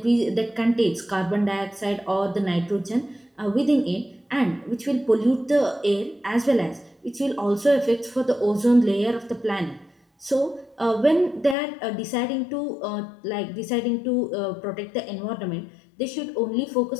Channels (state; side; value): drops out; right; at 11.6 s